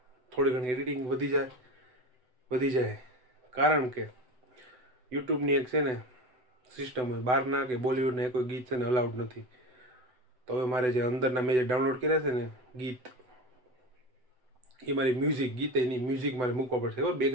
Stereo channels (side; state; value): left; late; 7.9 ms